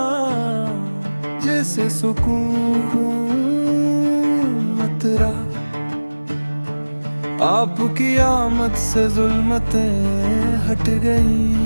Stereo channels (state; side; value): inverted; both; correlation -1.00